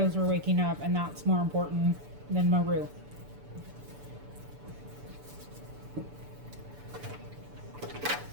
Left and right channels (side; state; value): left; late; 6.9 ms